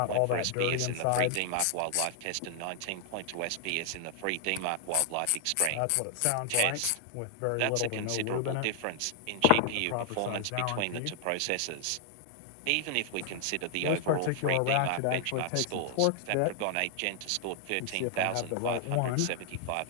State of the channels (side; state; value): both; different; correlation 0.00